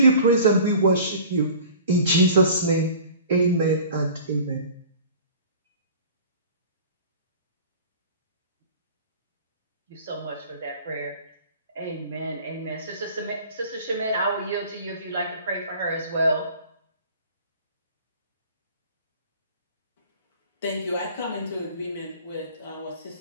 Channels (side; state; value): both; inverted; correlation -0.43